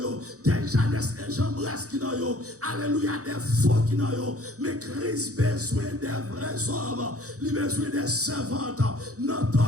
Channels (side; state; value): left; late; 0.66 ms